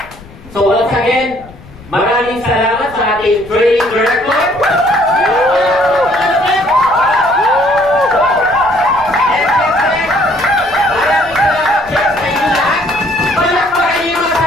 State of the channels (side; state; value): left; noise; rumble, 21 dB below the sound